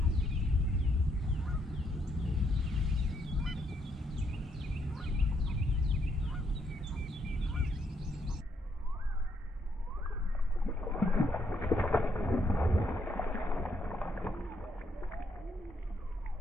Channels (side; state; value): both; normal; correlation 0.74